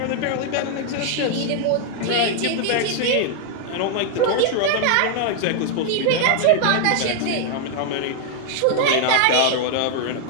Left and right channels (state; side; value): different; both; correlation 0.00